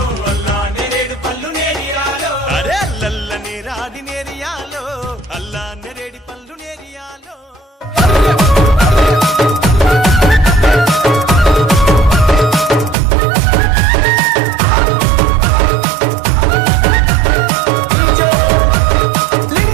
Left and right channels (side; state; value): left; drops out; at 13.0 s